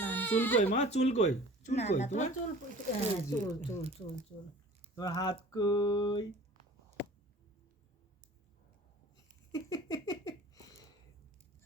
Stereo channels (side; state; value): both; normal; correlation 0.46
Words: চুল কই মা? চুল কই? চুল না কই না, তোমার তোমার? চুল হ্যাঁ, চুল চুল চুল চুল। তোমার হাত কই?